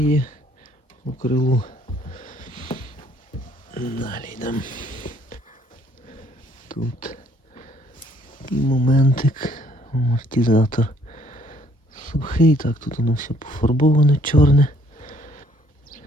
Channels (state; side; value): normal; both; correlation 0.63